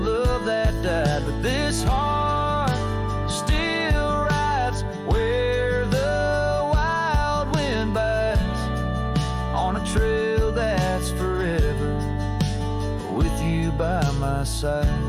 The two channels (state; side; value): identical; both; correlation 1.00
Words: that died. But this heart still rides where the wild wind bites, on a trail that's forever, with you by my side.